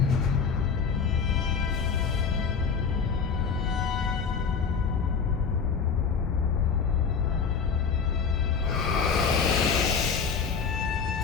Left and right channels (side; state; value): right; quieter; 6.0 dB